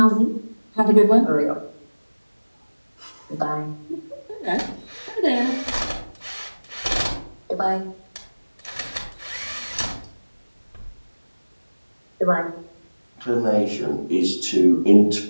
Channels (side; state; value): both; inverted; correlation -1.00